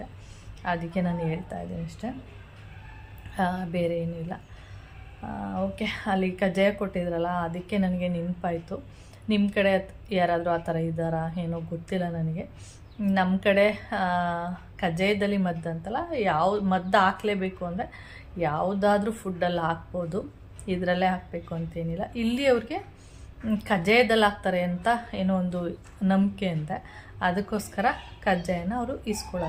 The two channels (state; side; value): identical; both; correlation 1.00